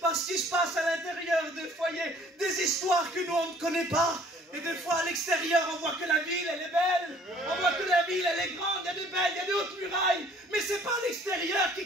qu'il se passe à l'intérieur des foyers des histoires que nous on ne connaît pas. Et des fois à l'extérieur on voit que la ville elle est belle, on voit que la ville elle est grande, il y a des belles, il y a des hautes murailles, mais c'est pas l'extérieur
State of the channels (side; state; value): both; normal; correlation 0.56